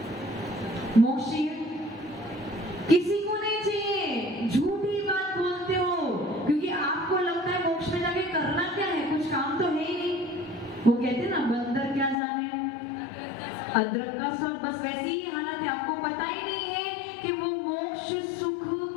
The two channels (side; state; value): right; drops out; at 12.2 s